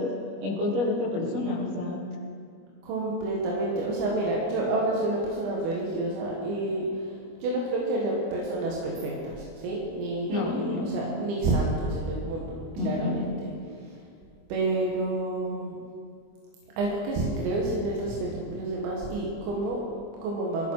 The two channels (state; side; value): late; left; 25 ms